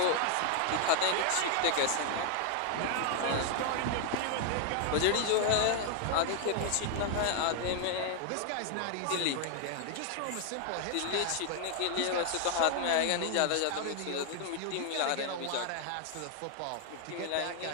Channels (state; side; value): different; both; correlation 0.00